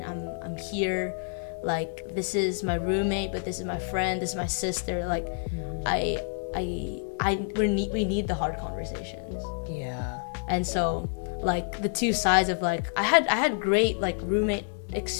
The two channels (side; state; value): right; silent; digital silence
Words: I'm here. Like this is my roommate, but this is my friend. This is my sister. Like we need the hard conversations. Yeah. And so like the two sides of like I had great like roommate